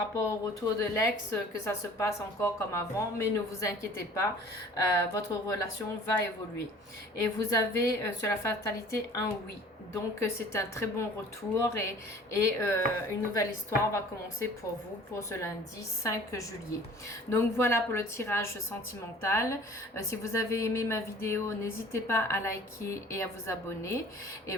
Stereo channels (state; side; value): normal; both; correlation 0.48